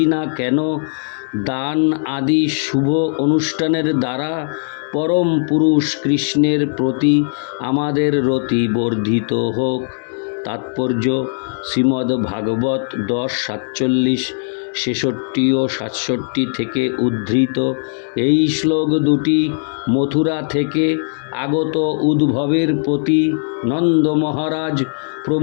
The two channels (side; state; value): right; silent; 67 dB below the other